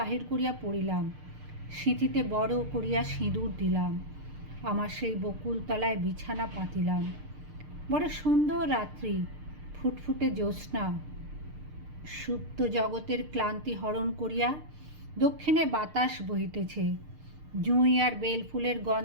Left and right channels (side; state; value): left; late; 6.6 ms